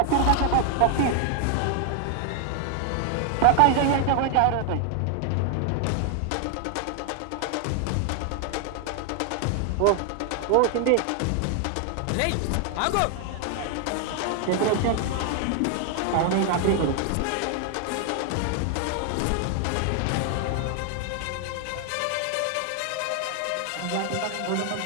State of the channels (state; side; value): different; both; correlation 0.00